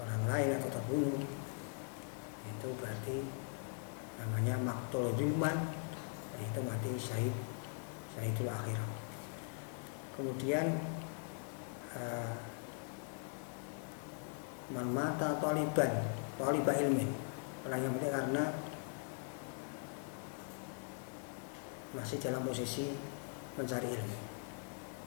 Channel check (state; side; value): silent; right; 51 dB below the other